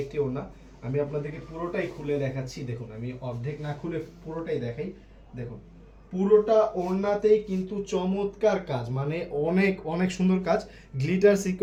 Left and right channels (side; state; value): both; identical; correlation 1.00